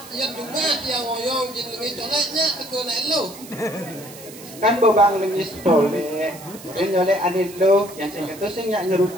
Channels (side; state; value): right; noise; hiss, 17 dB below the sound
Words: ya dunga tiang oyong jin lengis coleknya tegur naik lo. Kan bebang lengis tolek. Yang nyolek anil lo yang sing itu sing nyak